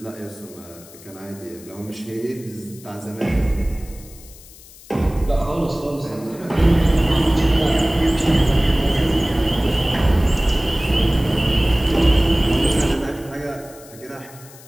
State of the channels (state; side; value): noise; left; hiss, 21 dB below the sound